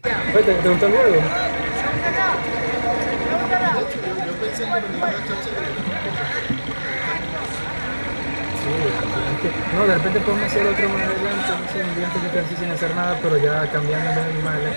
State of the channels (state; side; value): inverted; both; correlation -1.00